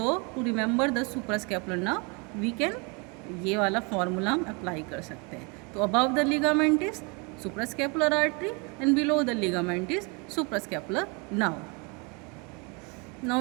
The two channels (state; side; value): quieter; left; 31.6 dB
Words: to remember the suprascapular nerve we can ये वाला फॉर्मूला हम अप्लाई कर सकते हैं। तो above the ligament is suprascapular artery and below the ligament is suprascapular nerve. Now